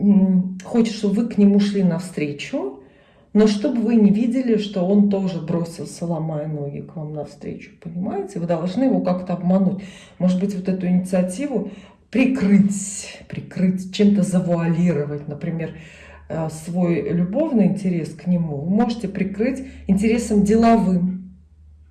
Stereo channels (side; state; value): both; identical; correlation 1.00